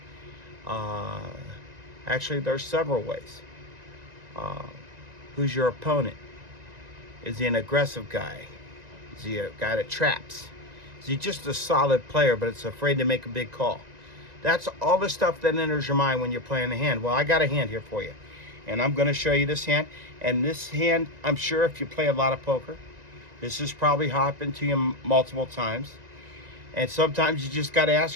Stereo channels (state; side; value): late; left; 1.9 ms